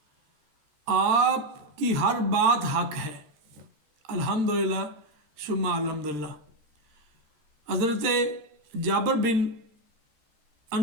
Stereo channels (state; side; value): late; left; 13 ms